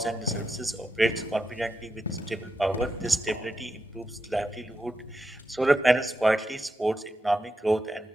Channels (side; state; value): both; normal; correlation 0.86